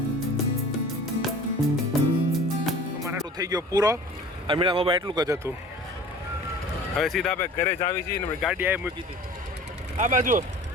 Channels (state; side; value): normal; both; correlation 0.43